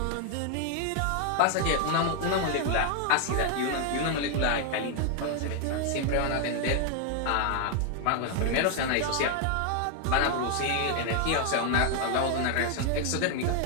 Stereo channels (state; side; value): different; both; correlation 0.00